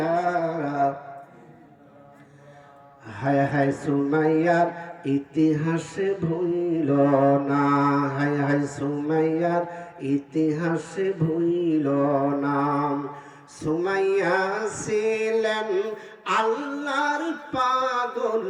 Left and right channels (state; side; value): identical; both; correlation 1.00